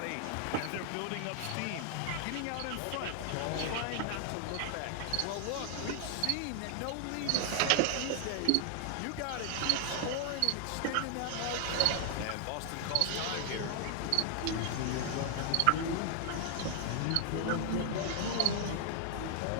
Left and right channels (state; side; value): different; both; correlation 0.00